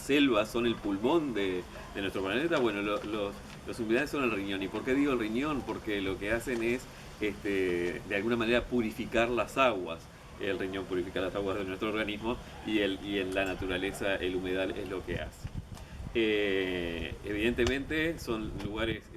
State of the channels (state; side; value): identical; both; correlation 1.00